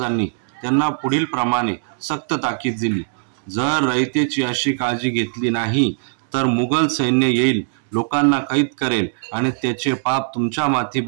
त्यांना पुढील प्रमाणे सक्त ताकीद दिली। जर रयतेची अशी काळजी घेतली नाही तर मुघल सैन्य येईल, लोकांना कैद करेल आणि त्याचे पाप तुमच्या माथी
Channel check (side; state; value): left; silent; 66 dB below the other